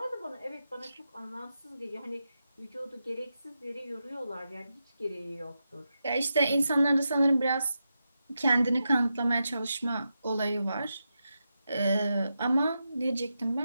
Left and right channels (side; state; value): both; inverted; correlation -0.88